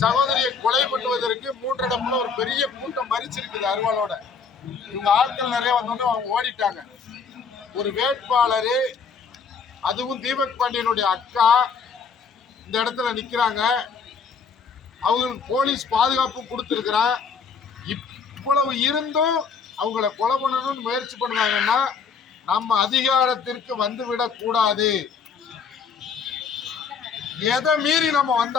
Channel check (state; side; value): quieter; right; 5.8 dB